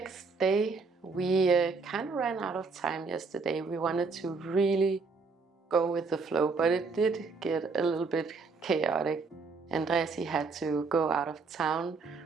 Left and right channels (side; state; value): left; quieter; 4.4 dB